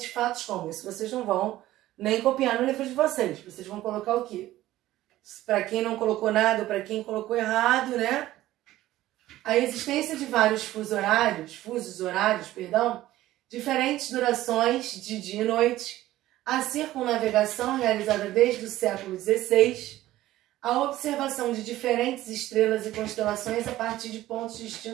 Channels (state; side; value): quieter; left; 15.2 dB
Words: fatos como isso. Vocês não vão nem copiar no livro de vocês. Vocês vão colocar o quê? Para quem não colocou nada, para quem colocou errado, né? A existência de vários fusos horários, diferentes durações de dia e noite, a circunnavegação realizada desde o século XVI, a observação de diferentes estrelas e constelações a partir de pontos